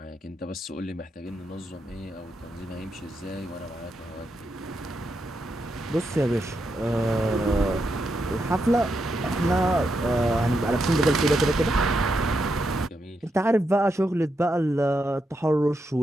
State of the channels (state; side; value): normal; both; correlation 0.83